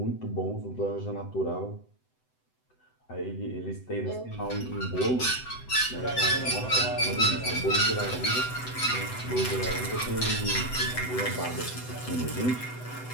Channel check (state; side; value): late; right; 7.9 ms